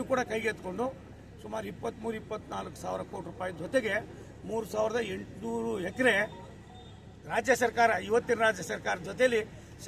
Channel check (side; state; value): both; identical; correlation 1.00